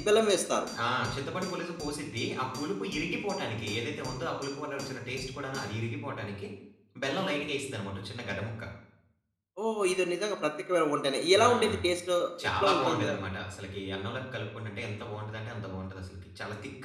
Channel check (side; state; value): both; identical; correlation 1.00